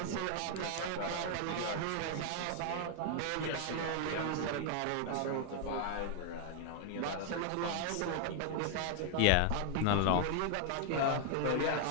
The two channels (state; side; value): different; both; correlation 0.00